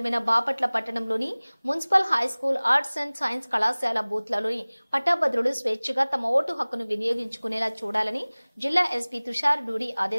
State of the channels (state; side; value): inverted; both; correlation -1.00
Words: బాపట్ల పట్టణంలోని municipal high school arts and science కళాశాల బూత్లలోని పట్టభద్రులు స్వేచ్ఛగా తమ ఓటు హక్కును వినియోగించుకునేలా చూడాలని జిల్లా ఎస్పీ తుషార్ డూడి